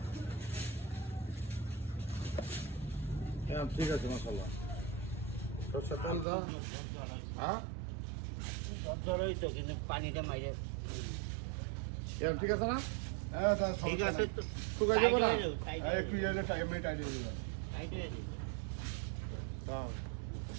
হ্যাঁ ঠিক আছে মাশাআল্লাহ সরষের তেল দাও হ্যাঁ জ্বর হইতো কিন্তু পানিটা মাইরে এরকম ঠিক আছে না হ্যাঁ এটা ঠিক আছে তো শুকাই যাবে না টাইট হ্যাঁ একটু এলে টাইম নেই টাইট হয়ে যাবে টাইট হয়ে যাবে। দাও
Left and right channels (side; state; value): left; drops out; at 6.2 s